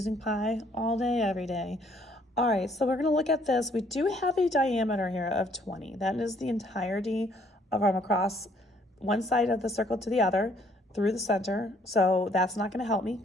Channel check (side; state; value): both; normal; correlation 0.64